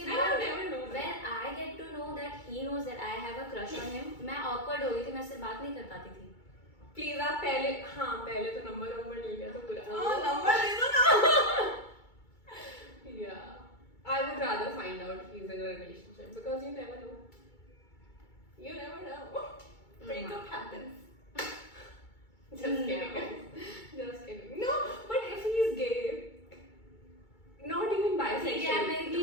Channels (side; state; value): right; late; 2.3 ms